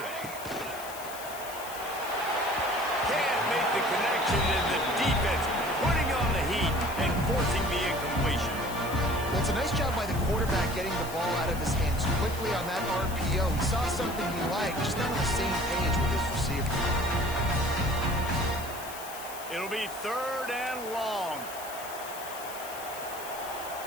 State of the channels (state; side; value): noise; left; hiss, 13 dB below the sound